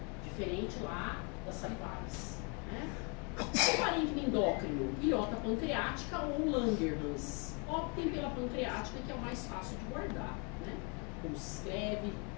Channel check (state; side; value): quieter; right; 34.4 dB